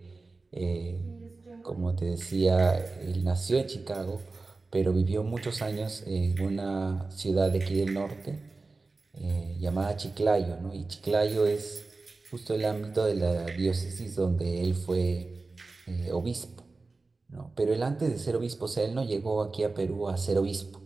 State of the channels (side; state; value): left; quieter; 3.6 dB